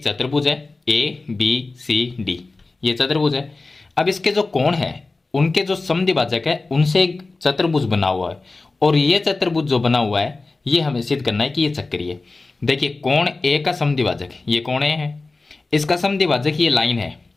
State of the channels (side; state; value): right; quieter; 3.5 dB